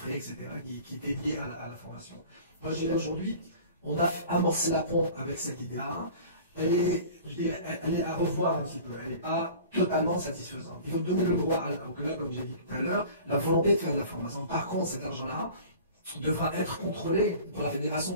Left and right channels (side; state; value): both; inverted; correlation -0.43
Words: etc., qui étaient liés à la formation. Moi, je dirais aujourd'hui, on a amorcé la pompe avec cette idée-là. Elle est à revoir un petit peu. Elle n'est pas totalement satisfaisante. Il faut donner le droit au club, comme j'ai dit tout à l'heure, la volonté de faire de la formation. Par contre, cet argent-là devra être contrôlé par la fédération.